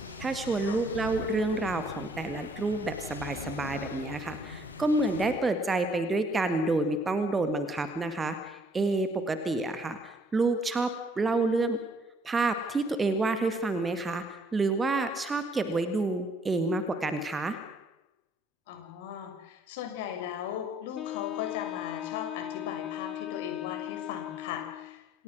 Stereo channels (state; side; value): normal; both; correlation 0.63